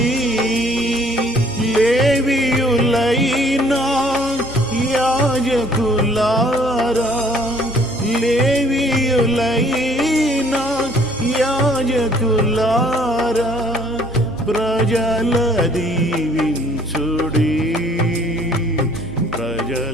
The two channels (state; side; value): normal; both; correlation 0.58